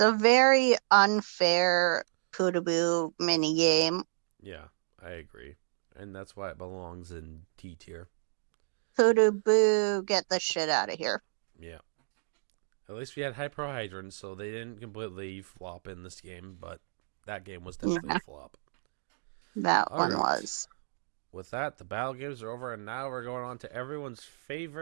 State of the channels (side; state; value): left; silent; digital silence